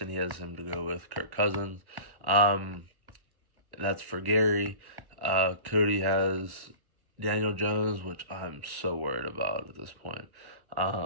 He has him to go with Kirk Cousins. That's for Gary. Cody has Daniel Jones, which I'm so worried about at this point.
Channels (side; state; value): left; late; 1.1 ms